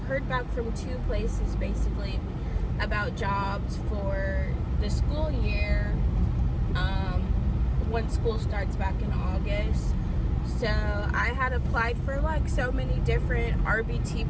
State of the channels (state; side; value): identical; both; correlation 1.00